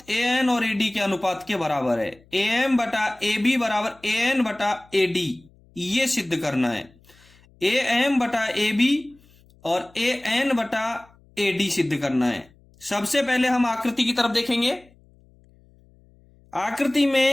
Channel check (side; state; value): left; noise; hum, 29 dB below the sound